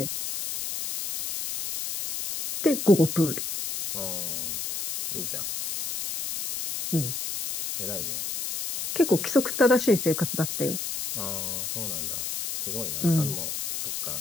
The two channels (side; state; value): left; noise; hiss, 4 dB below the sound